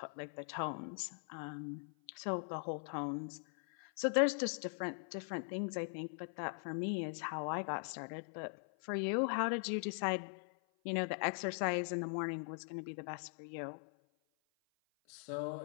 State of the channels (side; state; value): right; silent; 50 dB below the other